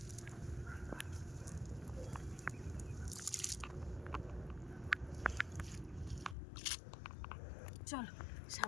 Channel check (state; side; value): drops out; right; at 6.4 s